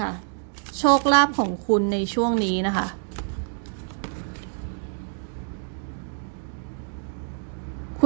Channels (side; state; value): left; silent; 61 dB below the other